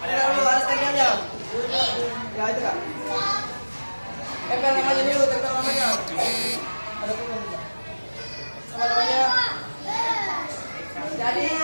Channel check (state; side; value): inverted; both; correlation -1.00